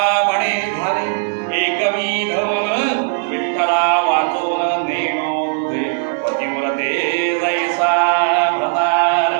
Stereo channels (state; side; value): silent; left; 67 dB below the other